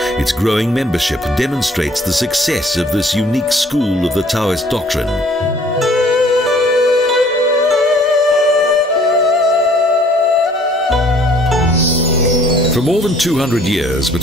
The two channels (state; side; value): normal; both; correlation 0.57